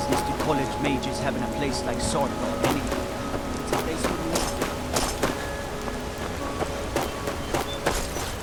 do college majors have in a place like Swordfall anyway? It's a place for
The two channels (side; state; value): both; identical; correlation 1.00